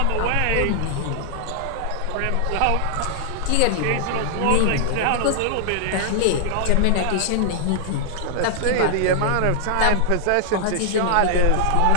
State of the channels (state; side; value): different; both; correlation -0.01